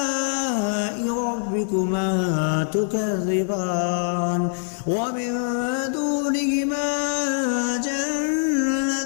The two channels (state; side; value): silent; right; digital silence